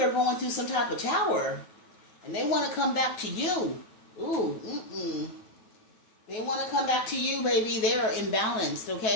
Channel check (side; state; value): right; late; 9.4 ms